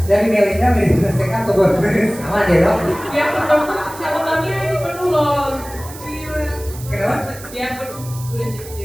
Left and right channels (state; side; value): noise; right; hiss, 16 dB below the sound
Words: Dari Melinda menyelesaikan atau bonus sama ya dok. Ya betul, catatannya ini penuh loh. Kenapa? Dia udah